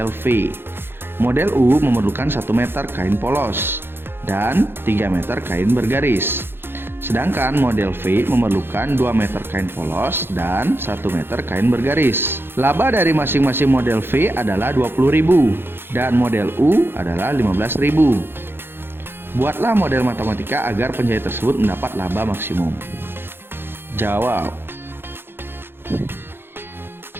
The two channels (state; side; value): late; left; 0.10 ms